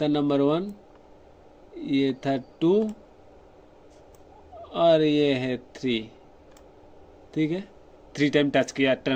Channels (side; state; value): both; identical; correlation 1.00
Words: नंबर 1, ये था 2 और ये है 3। ठीक है, 3 टाइम टच किया